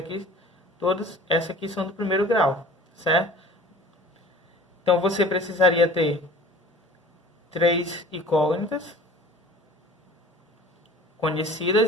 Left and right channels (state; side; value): normal; both; correlation 0.44